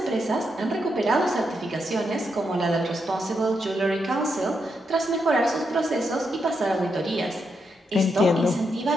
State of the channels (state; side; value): normal; both; correlation 0.82